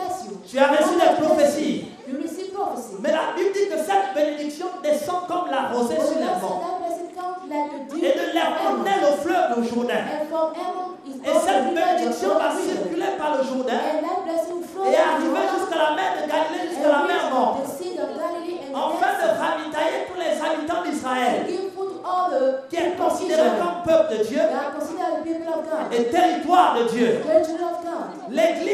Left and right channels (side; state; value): both; identical; correlation 1.00